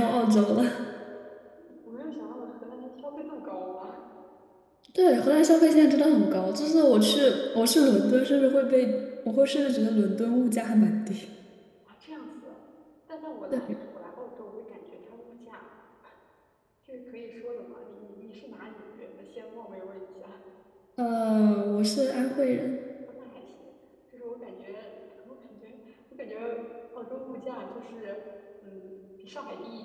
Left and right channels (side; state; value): both; identical; correlation 1.00